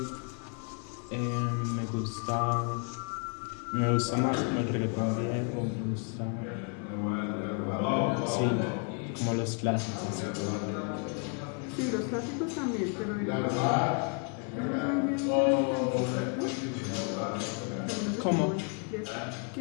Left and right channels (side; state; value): right; quieter; 39.3 dB